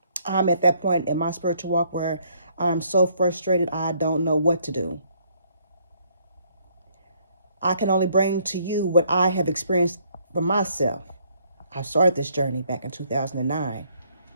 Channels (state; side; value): inverted; both; correlation -0.67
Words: I'm at that point in my spiritual walk where I'm so frustrated I don't know what to do. I can only bring to you what I have experienced for myself. I started this journey back in 2009.